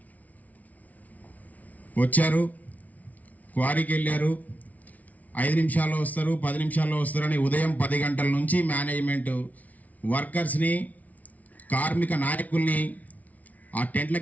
వచ్చారు, క్వారీకి వెళ్ళారు. 5 నిమిషాల్లో వస్తారు, 10 నిమిషాల్లో వస్తారని ఉదయం 10 గంటల నుంచి మేనేజ్మెంట్ వర్కర్స్ని, కార్మిక నాయకుల్ని ఆ టెంట్ల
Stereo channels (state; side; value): late; right; 0.072 ms